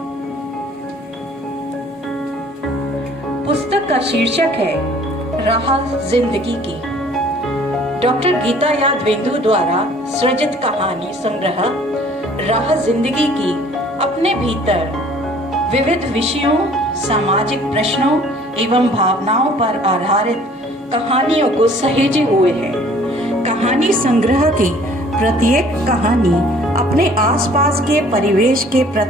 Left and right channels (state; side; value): normal; both; correlation 0.54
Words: पुस्तक का शीर्षक है राह जिंदगी की। डॉक्टर गीता यादवेंदु द्वारा सृजित कहानी संग्रह राह जिंदगी की अपने भीतर विविध विषयों, सामाजिक प्रश्नों एवं भावनाओं पर आधारित कहानियों को सहेजे हुए है। कहानी संग्रह की प्रत्येक कहानी अपने आसपास के परिवेश के